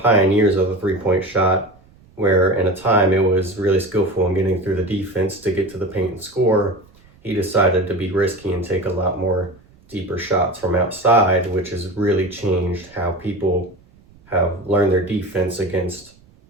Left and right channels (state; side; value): noise; right; rumble, 28 dB below the sound